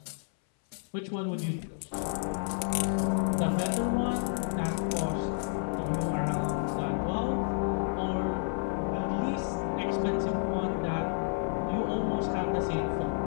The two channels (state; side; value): silent; right; 57 dB below the other